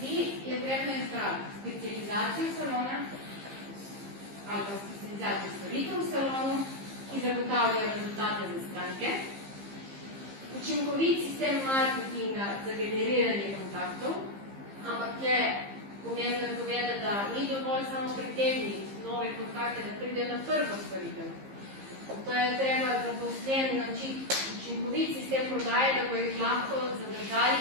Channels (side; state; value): left; late; 15 ms